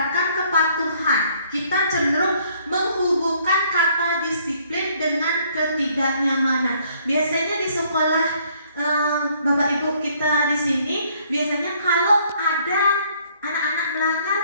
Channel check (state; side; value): inverted; both; correlation -0.64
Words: kepatuhan. Kita cenderung menghubungkan kata disiplin dengan ketidaknyamanan. Biasanya di sekolah Bapak Ibu kita di sini, biasanya kalau ada anak-anak melanggar,